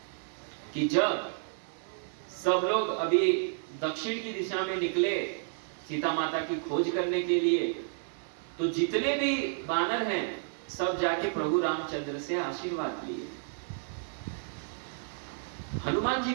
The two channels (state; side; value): silent; left; digital silence